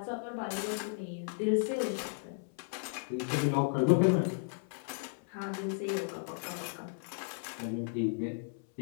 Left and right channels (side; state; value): right; silent; 55 dB below the other